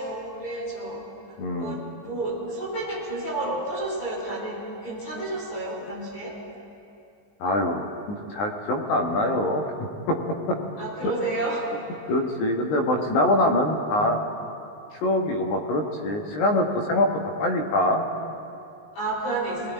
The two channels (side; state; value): right; late; 19 ms